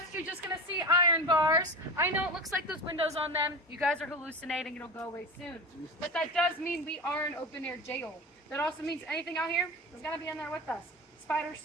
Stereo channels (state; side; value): normal; both; correlation 0.28